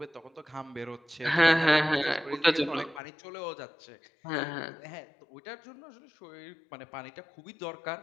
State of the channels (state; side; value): drops out; right; at 3.0 s